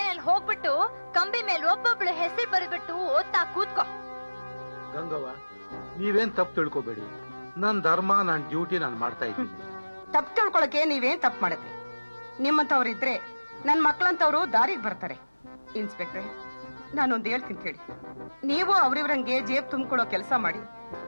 ಹೋಗ್ಬಿಟ್ಟು ಕಂಬಿ ಮೇಲೆ ಒಬ್ಬೊಬ್ಳು ಹೆಸರು ಬರೆದ್ಬಿಟ್ಟು ಓದ್ತಾ ಕೂತ್ಕೋ. ಗಂಗವ್ವ, ನೀವೇನ್ ತಪ್ಪು ತಿಳ್ಕೊಬೇಡಿ. ನನ್ ಧರ್ಮ, ನನ್ ಡ್ಯೂಟಿ ನಾನು ಮಾಡ್ತಾ ಇದ್ದೀನಿ. ತಪ್ಪು ತಿಳ್ಕೊಳಕ್ಕೆ ನೀವೇನ್ ತಪ್ಪು ಮಾಡುತ್ತೆ? ನಿಮ್ಮಂತವ್ರಿದ್ರೆ ನನ್ ಮಕ್ಳಂತವ್ರು ದಾರಿಗೆ ಬರ್ತಾರೆ. ಇನ್ಸ್ಪೆಕ್ಟ್ರೆ, ನಾನೊಂದು ಹೇಳ್ತೀನಿ ಕೇಳಿ. ನೀವು ಅವ್ರಿವ್ರಂಗೆ ಜೇಬ್ ತುಂಬಿಕೊಳ್ಳೋ ಕೆಲಸ ಮಾಡಿ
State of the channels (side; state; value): both; inverted; correlation -1.00